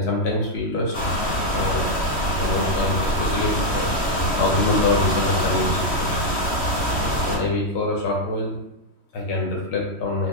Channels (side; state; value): right; late; 3.1 ms